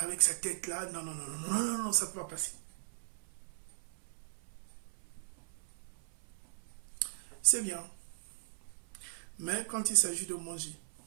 sa tête là. Non, non, non, non, non, non, non, ça ne peut pas passer. C'est bien. Mais quand il s'agit de manger,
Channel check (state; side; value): silent; left; 52 dB below the other